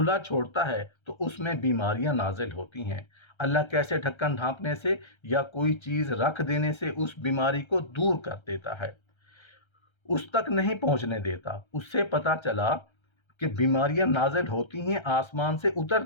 چھوڑتا ہے تو اس میں بیماریاں نازل ہوتی ہیں۔ اللہ کیسے ڈھکن ڈھانپنے سے یا کوئی چیز رکھ دینے سے اس بیماری کو دور کر دیتا ہے، اس تک نہیں پہنچنے دیتا۔ اس سے پتہ چلا کہ بیماریاں نازل ہوتی ہیں، آسمان سے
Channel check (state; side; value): late; right; 1.3 ms